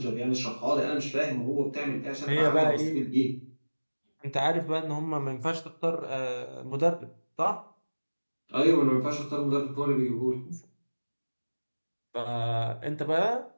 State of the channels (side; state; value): both; inverted; correlation -1.00